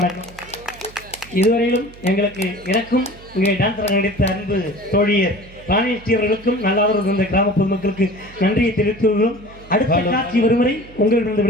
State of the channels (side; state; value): right; noise; hum, 21 dB below the sound